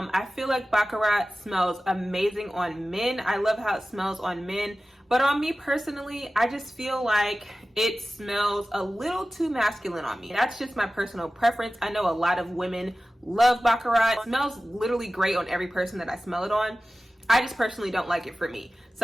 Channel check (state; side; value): normal; both; correlation 0.95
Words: feel like Baccarat smells amazing on men. I love how it smells on men, but on me personally, I just feel like it smells a little too masculine on me. That's just my personal preference. I know a lot of women love Baccarat. It smells literally great on every person that I smell it on. I just personally don't like it for me.